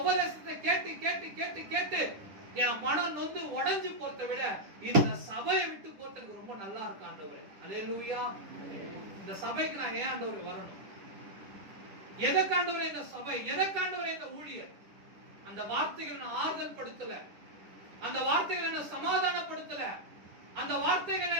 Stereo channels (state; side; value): late; left; 10 ms